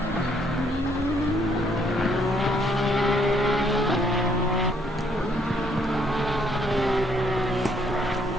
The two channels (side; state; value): left; noise; hum, 18 dB below the sound